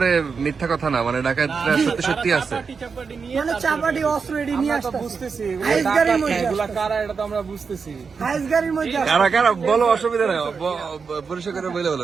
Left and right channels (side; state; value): left; quieter; 5.4 dB